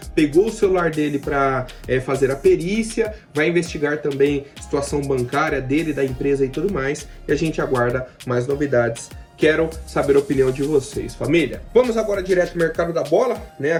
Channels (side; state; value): both; identical; correlation 1.00